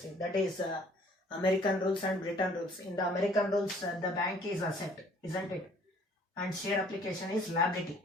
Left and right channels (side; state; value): both; normal; correlation 0.57